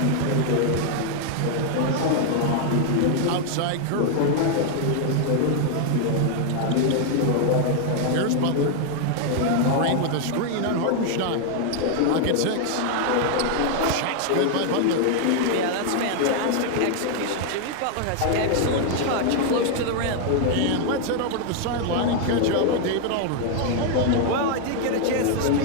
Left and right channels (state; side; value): different; both; correlation 0.00